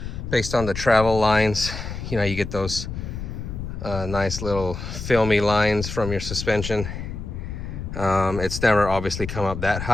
Based on the travel lines, you know, you get those nice little filmy lines from your suspension. It's never obviously come up that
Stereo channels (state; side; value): noise; left; rumble, 7 dB below the sound